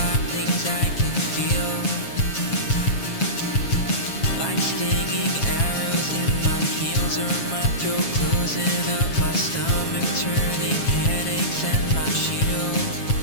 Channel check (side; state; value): right; late; 7.3 ms